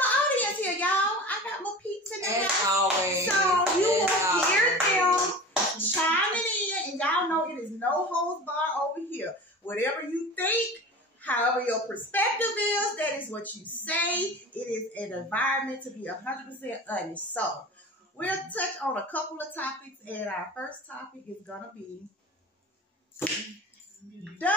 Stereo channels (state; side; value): normal; both; correlation 0.35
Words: audience here, y'all. I got my peeps in there. As always. So you will hear them chiming in, and y'all know it is no holds bar over here. Whatever you think, however your perspective is, that is what you say. It is an environment to be 100% honest. So we'll touch on a couple of topics, and our first topic is gonna be: